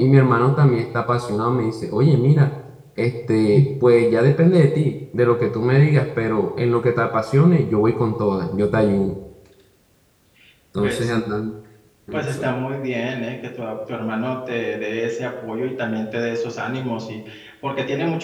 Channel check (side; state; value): both; identical; correlation 1.00